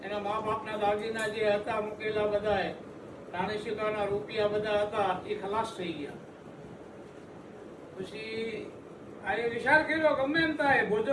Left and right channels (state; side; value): identical; both; correlation 1.00